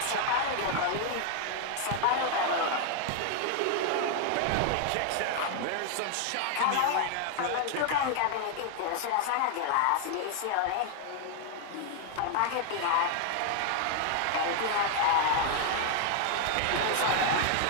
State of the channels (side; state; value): both; different; correlation 0.00